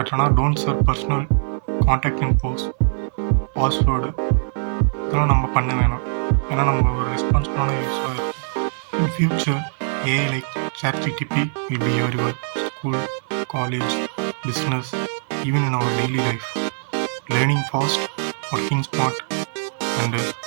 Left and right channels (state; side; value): silent; left; 64 dB below the other